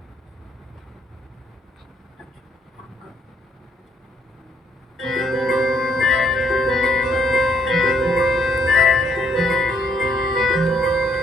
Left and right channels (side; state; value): both; normal; correlation 0.71